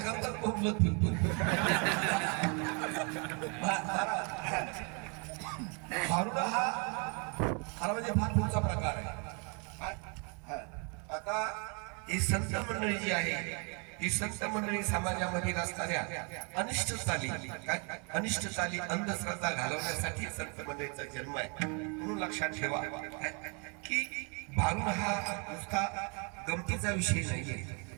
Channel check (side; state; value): left; quieter; 35.1 dB